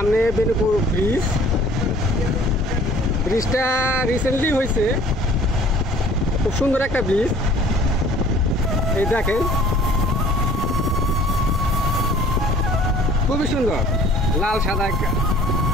বেনুপুর ব্রিজ, ব্রিজটা রিসেন্টলি হয়েছে, খুব সুন্দর একটা ব্রিজ। এই দেখেন, খুবই সুন্দর, লাল সাদা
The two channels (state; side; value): normal; both; correlation 0.52